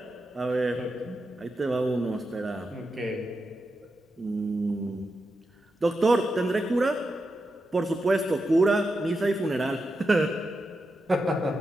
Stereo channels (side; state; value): both; normal; correlation 0.88